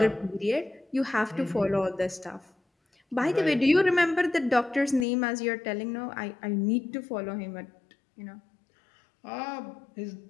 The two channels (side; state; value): right; drops out; at 5.1 s